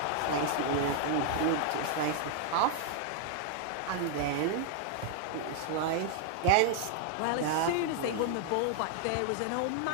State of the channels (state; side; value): different; both; correlation 0.00